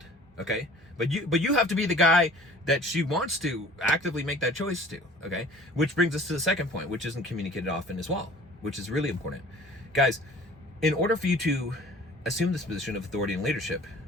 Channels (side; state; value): both; normal; correlation 0.48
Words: Okay, but you have to be the guy that she wants to actively make that choice to. Okay, which brings us to the second point, which isn't communicated often as well, which is really important, guys. In order for you to assume this position of authority and leadership,